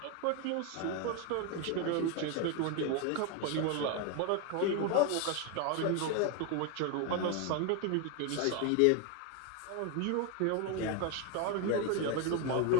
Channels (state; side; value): different; both; correlation 0.01